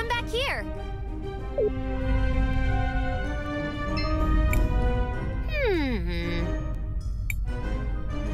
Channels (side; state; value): both; identical; correlation 1.00